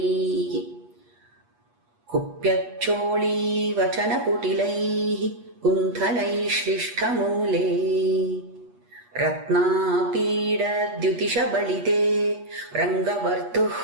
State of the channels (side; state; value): left; late; 8.3 ms